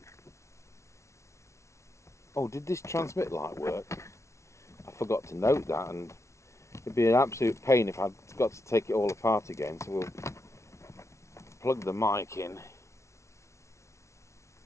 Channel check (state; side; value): late; right; 0.14 ms